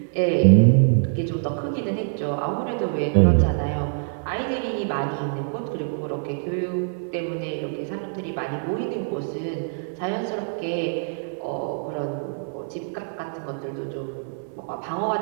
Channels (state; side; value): silent; left; 62 dB below the other